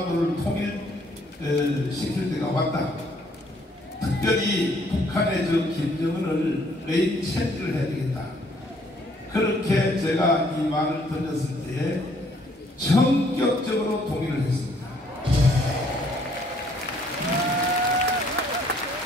통일시킬 때가 왔다. 특별히 북한의 저 김정은을 레인 체인지를 해야 되겠다. 그렇게 제가 이 말을 던졌을 때에 전격적으로 동의를 했습니다.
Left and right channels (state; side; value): normal; both; correlation 0.64